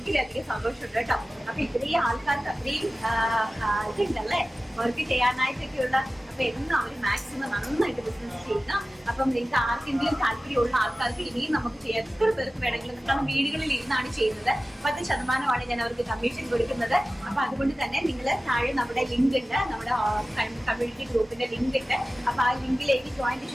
സന്തോഷമുണ്ട് കേട്ടോ. അപ്പൊ ഇത്രയും ആൾക്കാർക്ക് അത്രയും ഇതുണ്ടല്ലേ വർക്ക് ചെയ്യാനായിട്ടൊക്കെയുള്ള. അപ്പൊ എന്നും അവർ മാക്സിമം നന്നായിട്ട് ബിസിനസ് ചെയ്യുക. അപ്പം നിങ്ങൾക്ക് ആർക്കെങ്കിലും താല്പര്യമുള്ള ആൾക്കാർക്ക് ഇനിയും നമുക്ക് എത്ര പേർക്ക് വേണമെങ്കിലും, കാരണം വീടുകളിൽ ഇരുന്നാണ് ചെയ്യുന്നത്. 10% ഞാൻ അവർക്ക് കമ്മീഷൻ കൊടുക്കുന്നത്. അപ്പൊ അതുകൊണ്ട് തന്നെ നിങ്ങൾ താഴെ നമ്മുടെ ലിങ്ക് ഉണ്ട്, നമ്മുടെ കമ്മ്യൂണിറ്റി ഗ്രൂപ്പിന്റെ ലിങ്ക് ഉണ്ട്. അപ്പൊ ആ ലിങ്കിലേക്ക് ജോയിൻ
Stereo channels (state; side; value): normal; both; correlation 0.96